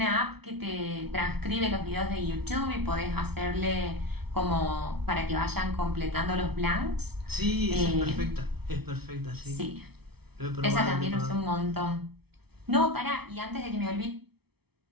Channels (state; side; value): late; left; 0.97 ms